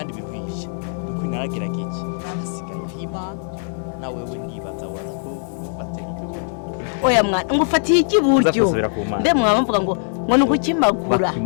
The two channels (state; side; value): silent; right; digital silence